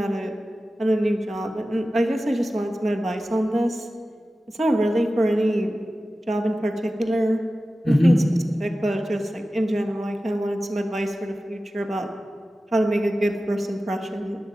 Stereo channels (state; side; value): normal; both; correlation 0.95